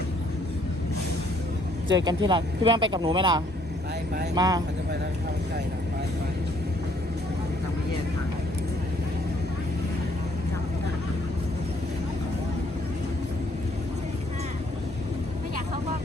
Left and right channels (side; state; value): both; normal; correlation 0.65